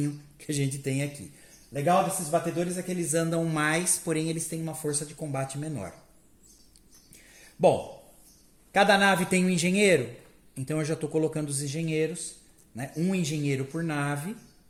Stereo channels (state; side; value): identical; both; correlation 1.00